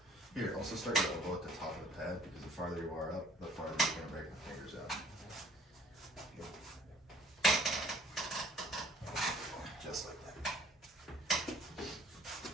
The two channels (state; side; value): normal; both; correlation 0.56